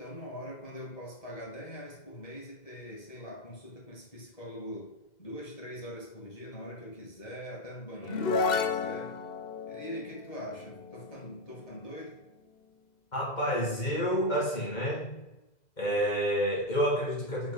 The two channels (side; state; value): right; late; 2.0 ms